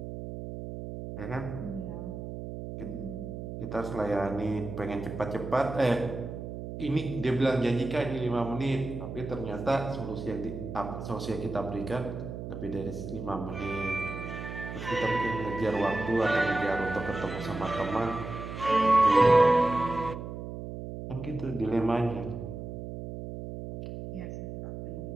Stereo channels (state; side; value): noise; right; hum, 8 dB below the sound